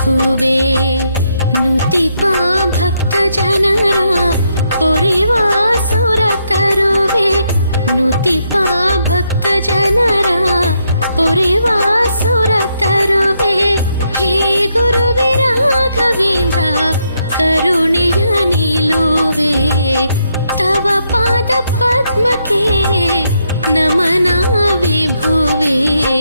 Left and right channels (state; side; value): inverted; both; correlation -0.78